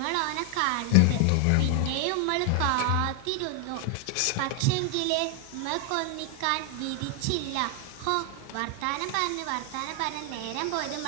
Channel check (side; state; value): both; different; correlation 0.00